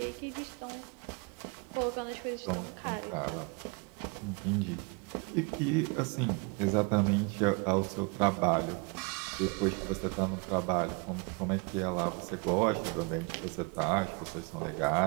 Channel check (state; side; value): quieter; left; 30.7 dB